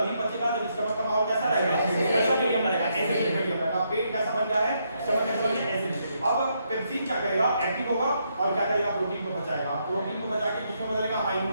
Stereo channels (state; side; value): inverted; both; correlation -0.77